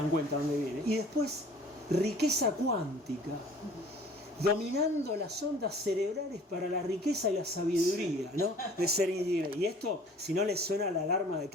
cuenta dónde viene. Y después riqueza cuántica, dominando las ondas cerebrales para la riqueza y la sabiduría, ¿no? De ser individuo. Y esto, si no les suena la alarma de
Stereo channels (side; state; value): both; normal; correlation 0.50